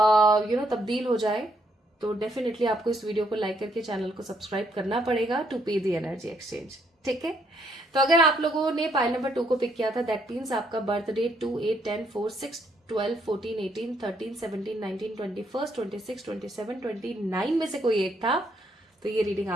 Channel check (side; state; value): both; normal; correlation 0.72